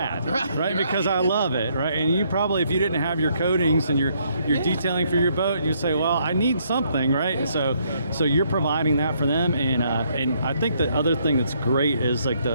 right? Because I love it, right? And you probably, if you didn't have your coatings and your detailing for your boat, you'd say, well, I need something, right? So you're providing that for them, and I think the other thing that's great is like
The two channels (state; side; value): inverted; both; correlation -0.71